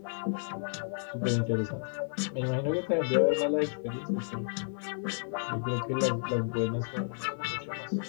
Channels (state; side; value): silent; right; 57 dB below the other